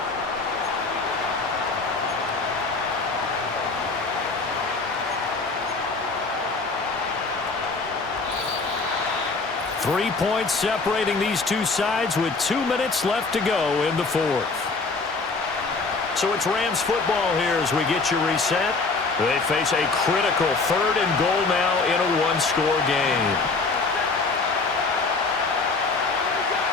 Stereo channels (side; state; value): right; quieter; 4.0 dB